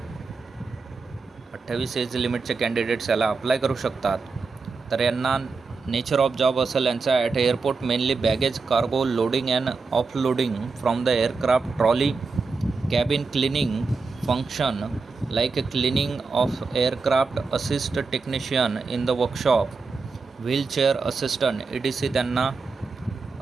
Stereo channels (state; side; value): quieter; left; 4.4 dB